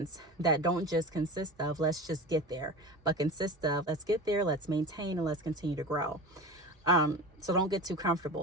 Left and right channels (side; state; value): both; normal; correlation 0.31